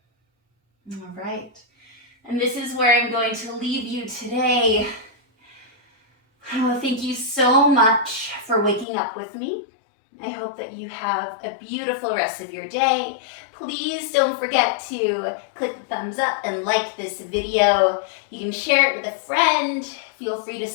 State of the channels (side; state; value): right; drops out; at 8.8 s